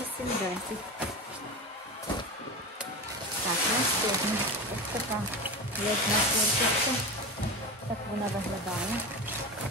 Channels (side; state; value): both; normal; correlation 0.26